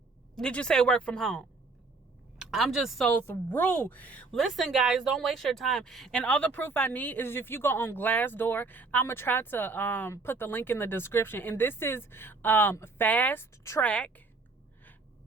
did you say work from home. I'm just so through. Listen, guys, don't waste your time. And all the proof I need is if you go on Glassdoor, I'm going to try to put the link in the description. And this is Fast Trak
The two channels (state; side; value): quieter; left; 3.8 dB